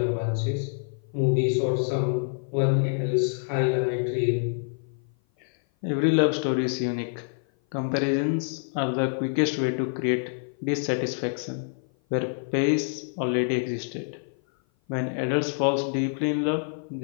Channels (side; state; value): right; silent; 56 dB below the other